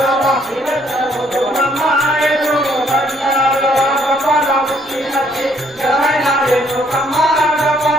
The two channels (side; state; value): both; normal; correlation 0.67